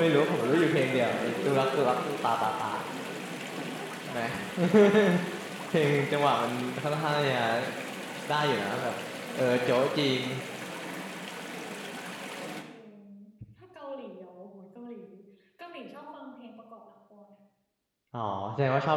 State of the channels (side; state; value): both; identical; correlation 1.00